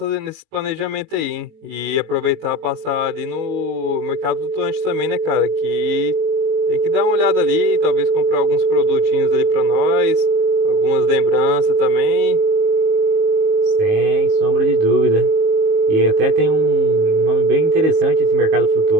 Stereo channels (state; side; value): late; left; 19 ms